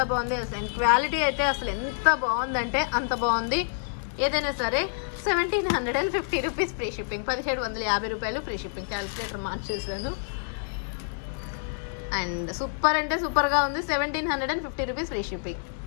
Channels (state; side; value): silent; right; digital silence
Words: బాగుంది. అండ్ క్వాలిటీ అయితే అసలు ఎంత బాగుందంటే అంత బాగుంది. ఏదైనా సరే 1750 రూపీస్ ఫ్రీ షిప్పింగ్, 1750 రూపాయలు ఫ్రీ షిప్పింగ్. క్యాలిక్యులేటర్ మార్చేసాను. అండ్ సూపర్ అంటే సూపర్గా ఉంది. 1750 రూపీస్ ఫ్రీ షిప్పింగ్,